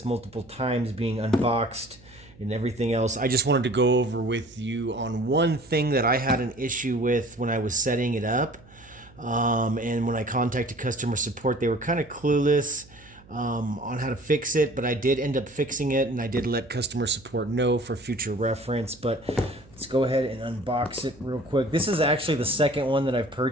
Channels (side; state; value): right; noise; hum, 25 dB below the sound